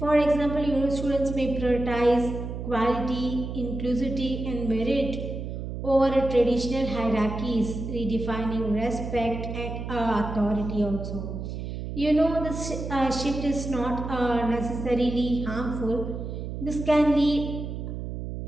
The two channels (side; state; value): right; noise; hum, 6 dB below the sound